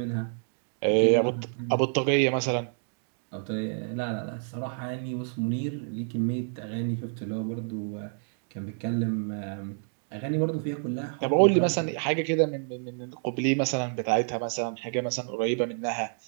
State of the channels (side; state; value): left; silent; 59 dB below the other